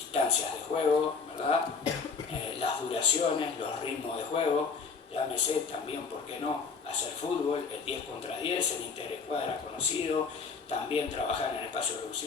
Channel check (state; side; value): quieter; right; 5.2 dB